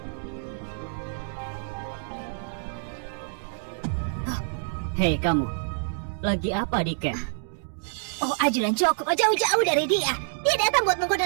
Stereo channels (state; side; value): silent; left; digital silence